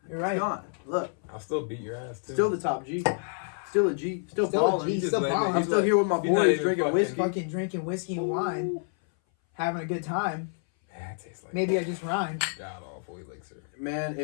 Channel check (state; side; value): silent; right; 58 dB below the other